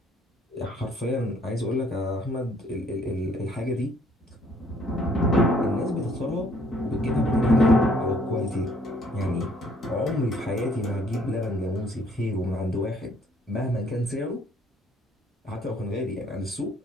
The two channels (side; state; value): both; normal; correlation 0.62